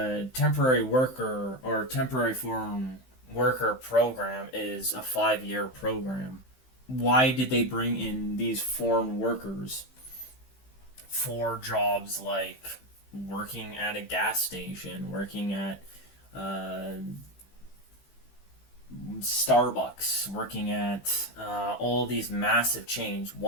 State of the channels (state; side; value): late; right; 15 ms